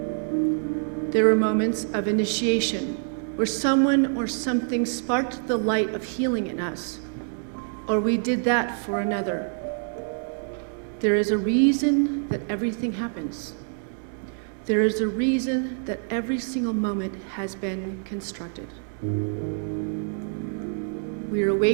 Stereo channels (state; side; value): silent; left; 58 dB below the other